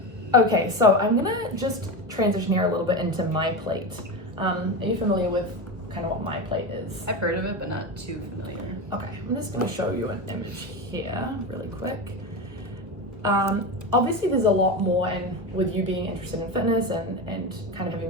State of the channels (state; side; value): late; left; 1.4 ms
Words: Okay, so I'm gonna just transition here a little bit into my plate. Are you familiar with kind of what my plate is? I've heard of it, but not too familiar. Okay, I'm just going to show you an image here really quick. Obviously there's a lot more, and with you being interested in fitness and kind of having